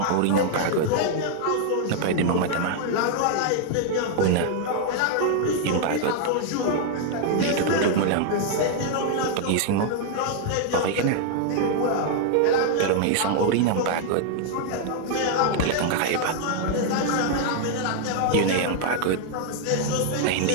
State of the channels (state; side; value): different; both; correlation 0.00